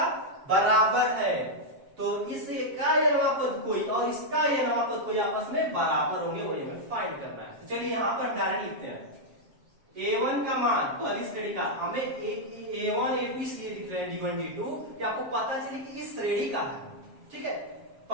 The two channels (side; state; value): left; late; 7.4 ms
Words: बराबर है, तो इसका यनवा पद कोई और इसका यनवा पद कोई आपस में बराबर होंगे, वही हमें फाइंड करना है। तो चलिए यहाँ पर डायरेक्ट लिखते हैं A1 का मान, पहली श्रेणी का हमें A1 A2 इसलिए लिख रहे हैं D1 D2 कि आपको पता चले कि इस श्रेणी का है, ठीक है।